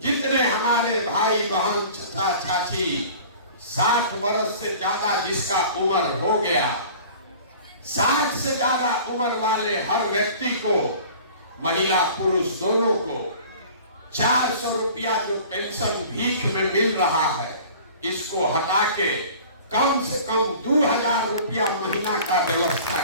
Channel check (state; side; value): inverted; both; correlation -0.44